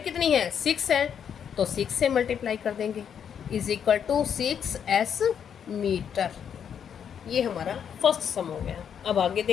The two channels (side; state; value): right; quieter; 8.1 dB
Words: कितनी है 6 है तो 6 से मल्टीप्लाई कर देंगे, is equal to 6s metre. ये हमारा फर्स्ट सम हो गया। अब आगे